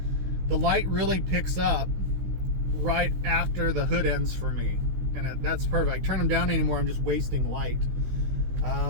the light really picks up right after the hood ends for me, and that's perfect. I turn them down anymore. I'm just wasting light.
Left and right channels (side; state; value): left; late; 16 ms